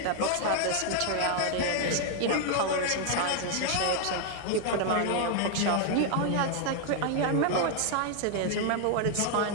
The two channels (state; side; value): different; both; correlation 0.00